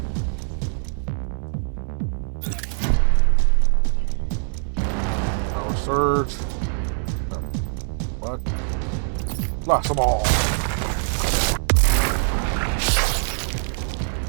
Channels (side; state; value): left; silent; 62 dB below the other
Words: Power surge. What? Blast them all.